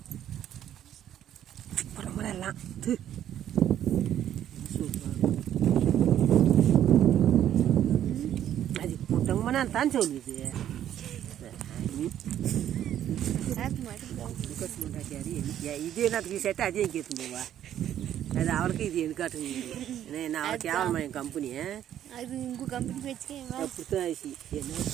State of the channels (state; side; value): quieter; left; 10.9 dB